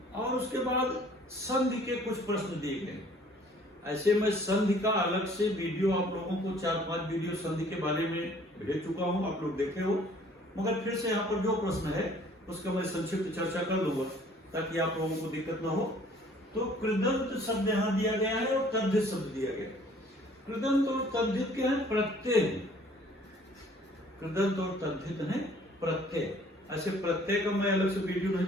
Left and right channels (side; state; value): both; normal; correlation 0.56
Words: और उसके बाद संधि के कुछ प्रश्न दिए गए। ऐसे मैं संधि का अलग से वीडियो आप लोगों को 4-5 वीडियो संधि के बारे में भेज चुका हूं, आप लोग देखे हो, मगर फिर से यहाँ पर जो प्रश्न है उसका मैं संक्षिप्त चर्चा कर लूंगा ताकि आप लोगों को दिक्कत ना हो। तो कृदंत शब्द यहाँ दिया गया है और तद्धित शब्द दिया गया है। कृदंत और तद्धित के हैं प्रत्यय, कृदंत और तद्धित है प्रत्यय। ऐसे प्रत्यय का मैं अलग से वीडियो नहीं